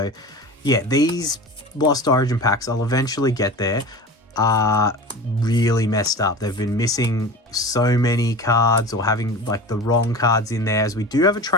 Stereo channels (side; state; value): both; normal; correlation 0.33